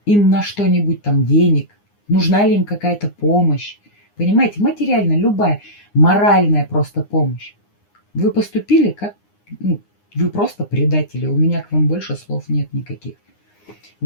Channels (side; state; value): right; late; 9.7 ms